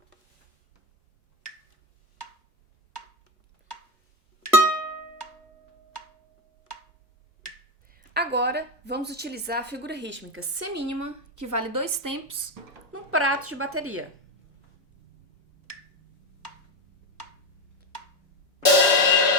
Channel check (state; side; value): normal; both; correlation 0.12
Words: Agora, vamos utilizar a figura rítmica semínima, que vale 2 tempos, num prato de bateria.